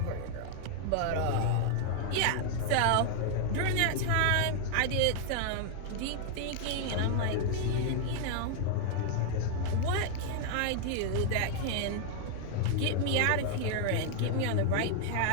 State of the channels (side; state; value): both; different; correlation 0.00